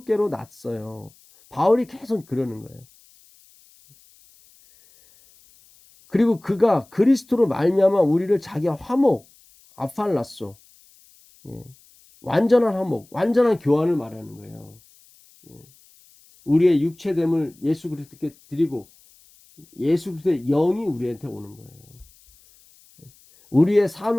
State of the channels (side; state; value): left; noise; hiss, 29 dB below the sound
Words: 났어요. 바울이 계속 그러는 거예요. 그리고 그가 그리스도로 말미암아 우리를 자기와 화목, 아팔라소, 완전한 화목, 완전한 교환을 말하는 거예요. 우리의 육체됨을 예수 그리스도께 드리고 예수 그리스도의 영이 우리한테 오는 거예요. 우리의